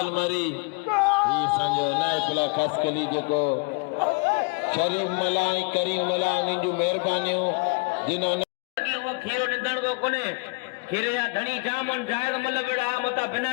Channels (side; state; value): right; quieter; 32.1 dB